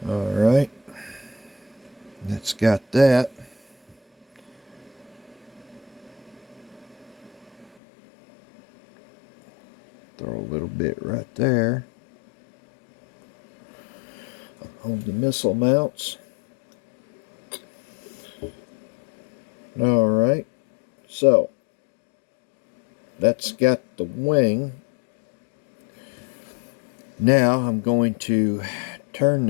All right, that's got that. Throw a little bit right there on the missile mounts. All right, so that's got the wing. Now I'm going to turn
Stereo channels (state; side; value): drops out; right; at 7.7 s